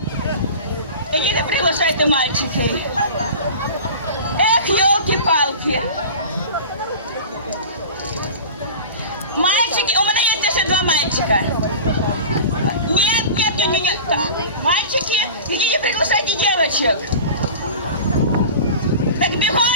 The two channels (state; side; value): inverted; both; correlation -0.35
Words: і не приглашайте мальчики. Ех, ёлки-палки. Мальчики, у мене є ще два мальчика. Нет. Мальчики, идите приглашайте девочек. Так бігом,